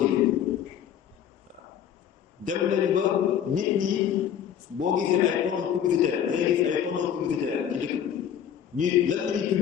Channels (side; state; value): right; quieter; 9.3 dB